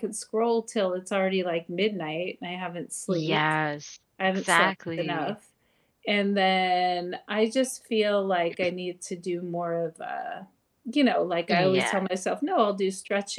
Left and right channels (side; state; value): both; identical; correlation 1.00